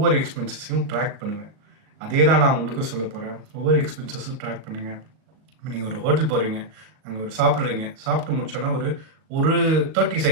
எக்ஸ்பென்சஸையும் ட்ராக் பண்ணுவேன். அதே தான் நான் உங்களுக்கும் சொல்ல போகிறேன். ஒவ்வொரு எக்ஸ்பென்சஸும் ட்ராக் பண்ணுங்கள். இப்போ நீங்கள் ஒரு ஹோட்டல் போகிறீங்க, அங்கே ஒரு சாப்பிட்றீங்க, சாப்பிட்டு முடிச்சோன்னா ஒரு ஒரு 30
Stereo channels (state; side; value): late; left; 38 ms